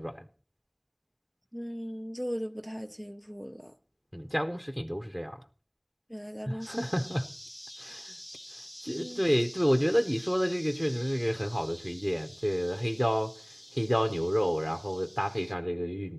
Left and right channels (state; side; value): identical; both; correlation 1.00